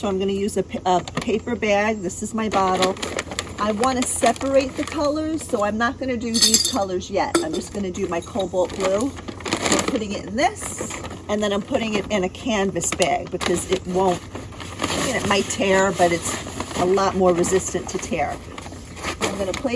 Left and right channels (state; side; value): identical; both; correlation 1.00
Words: I'm going to use a paper bag. This is my bottle. I want to separate the colors, so I'm not going to do these colors yet. I'm just going to do my cobalt blue. I'm putting it in this, and then I'm putting it in a canvas bag because it won't, it might tear, but it's a lot more resistant to tear. I'm going to